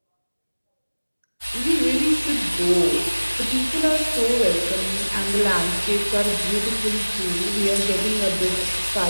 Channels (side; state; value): both; inverted; correlation -1.00